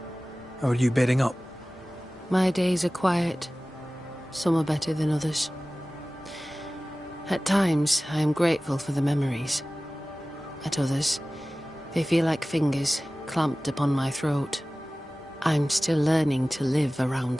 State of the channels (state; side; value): normal; both; correlation 0.97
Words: How are you bedding up? My days are quiet. Some are better than others. At times, I am grateful for the memories. At others, they feel like fingers clamped upon my throat. I'm still learning to live